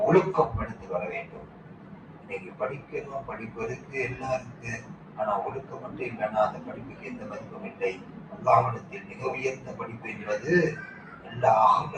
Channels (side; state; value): both; identical; correlation 1.00